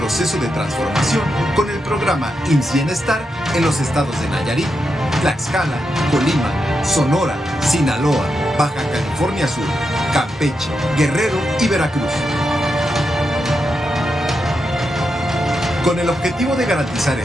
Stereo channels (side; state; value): both; normal; correlation 0.86